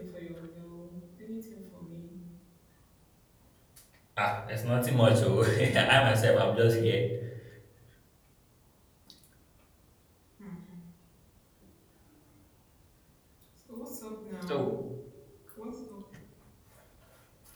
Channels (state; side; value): identical; both; correlation 1.00